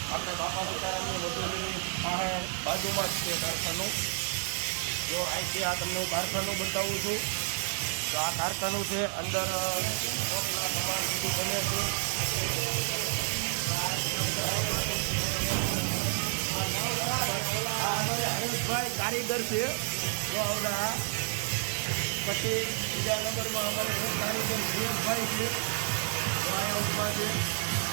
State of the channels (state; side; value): silent; left; digital silence